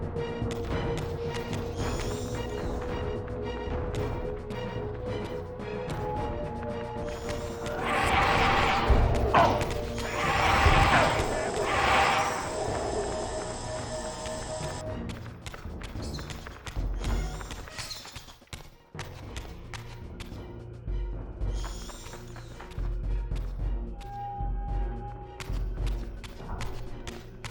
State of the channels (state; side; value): identical; both; correlation 1.00